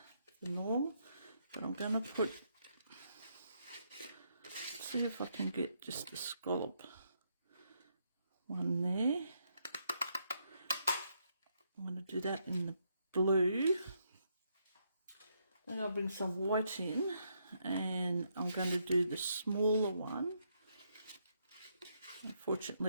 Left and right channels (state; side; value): inverted; both; correlation -0.76